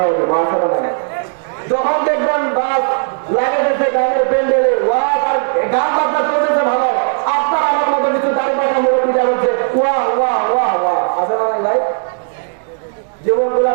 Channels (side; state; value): left; silent; 69 dB below the other